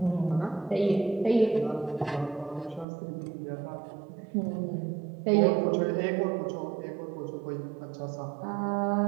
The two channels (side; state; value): left; drops out; at 2.9 s